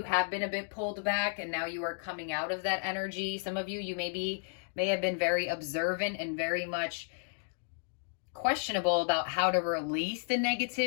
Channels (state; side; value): silent; right; digital silence